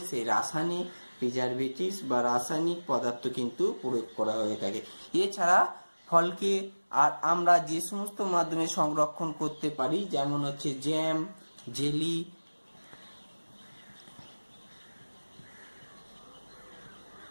সেই রাসায়নিক প্রিজারভেটিভস বা রাসায়নিক পদার্থ কিন্তু প্রয়োগ করা হয়ে থাকে। এছাড়া ফলকে আর আমরা যে সমস্ত মাধ্যমে সংরক্ষণ করতে পারি, যেমন হচ্ছে জ্যাম, জেলি,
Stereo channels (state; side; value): inverted; both; correlation -1.00